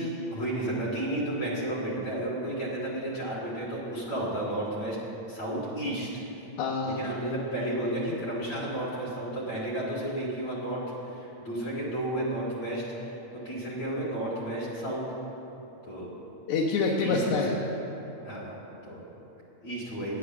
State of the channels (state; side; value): late; right; 9.1 ms